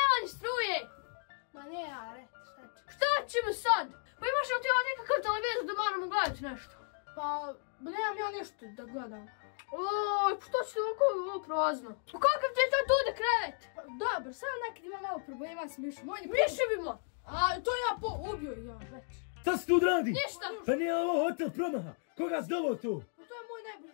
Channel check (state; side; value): silent; right; 55 dB below the other